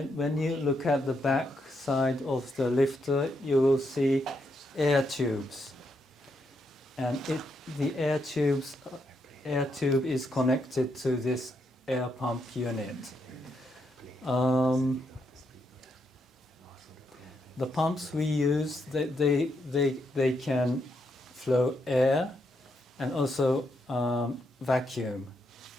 you look at the back side of the lifter, you will see air tubes. And the air tube is connected to this air pump unit. The pumps we use, they can flow air and also vacuum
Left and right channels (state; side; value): normal; both; correlation 0.79